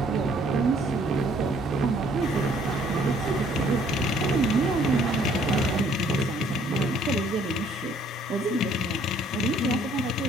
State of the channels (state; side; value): normal; both; correlation 0.61